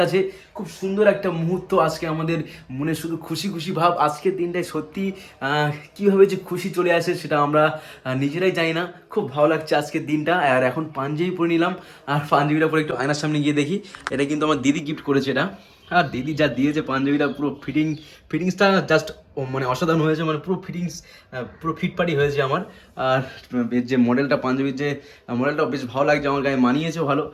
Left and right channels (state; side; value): identical; both; correlation 1.00